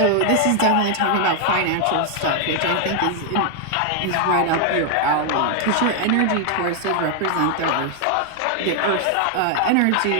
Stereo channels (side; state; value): both; different; correlation 0.00